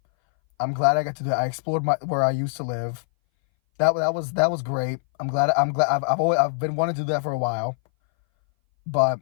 I'm glad I got to do that. I explored where I used to live. That was great. I've been wanting to do that for a while. But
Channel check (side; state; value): right; silent; 60 dB below the other